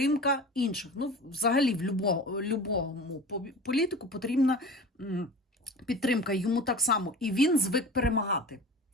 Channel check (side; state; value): both; normal; correlation 0.37